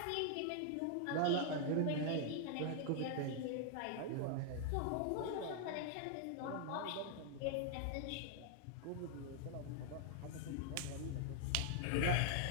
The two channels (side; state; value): both; different; correlation -0.01